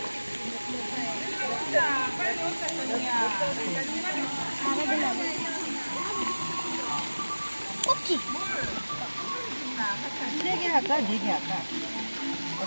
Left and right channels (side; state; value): both; inverted; correlation -1.00